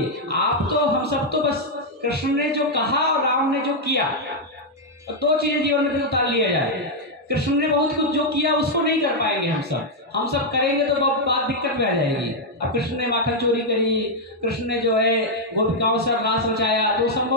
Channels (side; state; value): both; normal; correlation -0.02